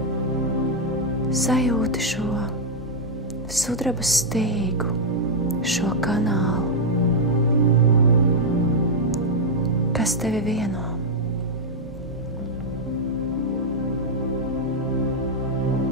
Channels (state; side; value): normal; both; correlation -0.02